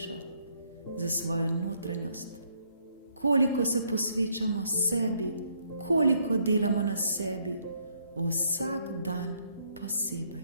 za svojo notranjost, koliko se posvečamo sebi, koliko delamo na sebi, vsak dan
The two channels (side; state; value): both; inverted; correlation -0.70